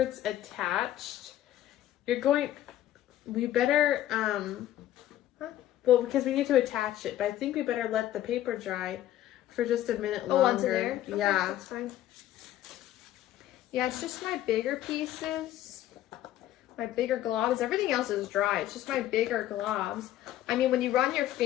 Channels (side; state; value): right; quieter; 13.0 dB